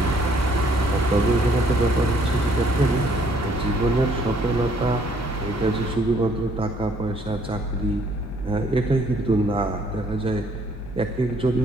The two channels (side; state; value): both; normal; correlation 0.64